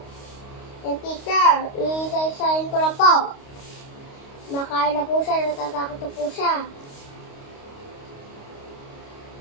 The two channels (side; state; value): right; late; 29 ms